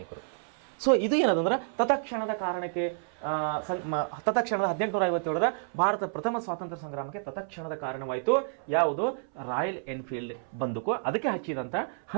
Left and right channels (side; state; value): left; silent; 58 dB below the other